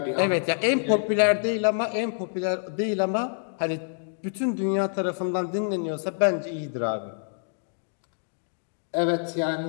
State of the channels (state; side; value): silent; right; digital silence